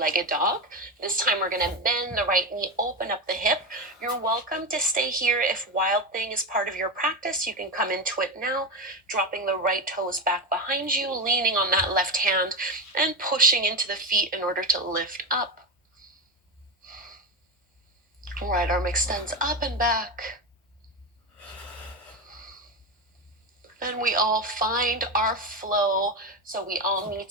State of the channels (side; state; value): both; normal; correlation 0.15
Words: dog. This time we're going to bend the right knee, open up the hip. You're welcome to stay here. If Wild Thing is part of your practice, you can come into it now, dropping the right toes back behind you, leaning on that left hand, and pushing into the feet in order to lift up. Right arm extends up and back. And we all find our flow. So we all